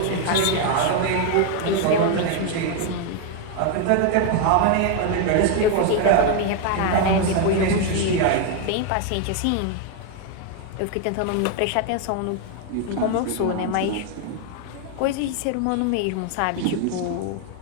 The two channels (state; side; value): different; both; correlation 0.01